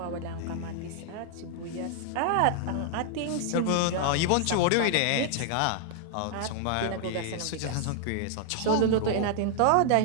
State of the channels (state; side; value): different; both; correlation 0.00